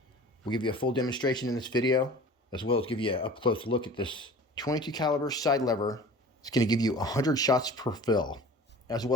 We'll give you a full demonstration in this video, as well as give you an up-close look at this 22 caliber side lever. It's going to give you 100 shots per fill. As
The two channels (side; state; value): both; normal; correlation 0.41